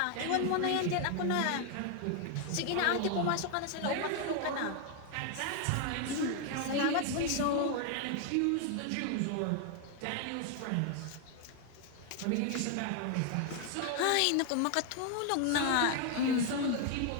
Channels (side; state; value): both; different; correlation 0.01